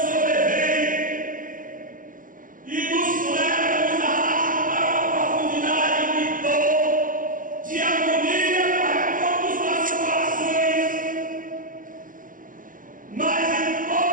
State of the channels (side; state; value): left; late; 0.39 ms